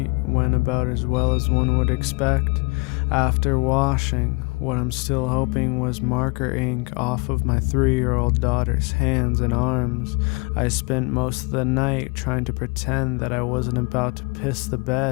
went about as well as one would expect. After washing what I'm still hoping was marker ink off of my 3-year-old daughter's hands and arms, I spent most of the night trying to pretend that I wasn't about to piss the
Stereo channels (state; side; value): quieter; right; 29.9 dB